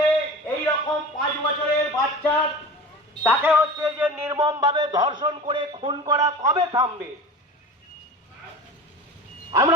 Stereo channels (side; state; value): both; normal; correlation 0.34